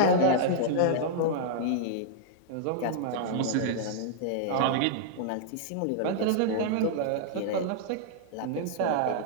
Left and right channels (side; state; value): both; different; correlation -0.01